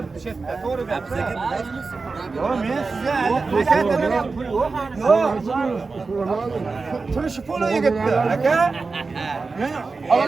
shu yerda. To'g'ri gapirsan. Yo, men sizga turmush puli yigitdi, aka. Men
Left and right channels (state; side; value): quieter; left; 4.2 dB